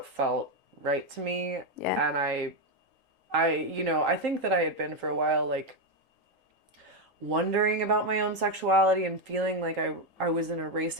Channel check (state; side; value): late; left; 3.8 ms